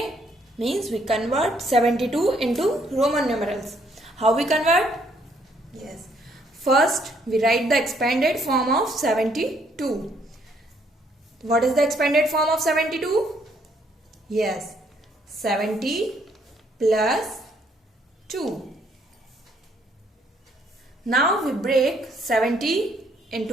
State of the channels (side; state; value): both; normal; correlation 0.68